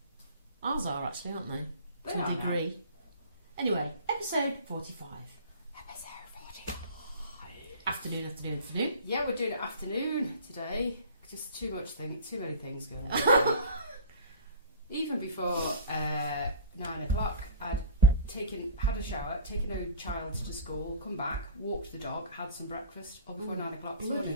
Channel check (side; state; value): both; inverted; correlation -0.40